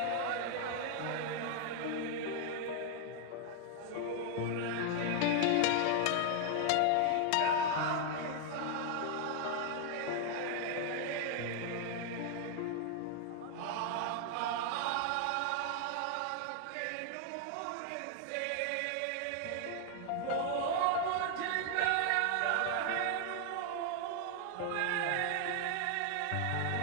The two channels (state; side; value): different; both; correlation 0.00